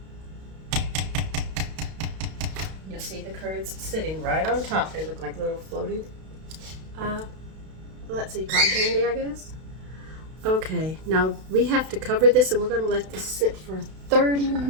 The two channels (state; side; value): late; left; 32 ms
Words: it. You'll see the curds sitting right on top. They look like little floating, let's see, cotton candy, I guess. Okay, now we have to cover this and we're going to let this sit for 30